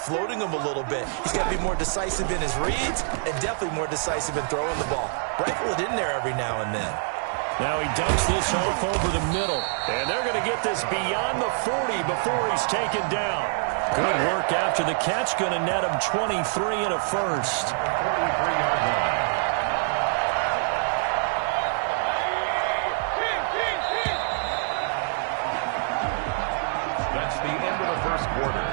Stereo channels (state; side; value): silent; left; 61 dB below the other